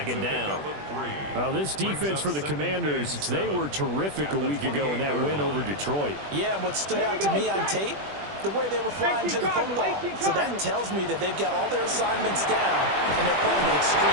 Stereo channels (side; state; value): left; late; 20 ms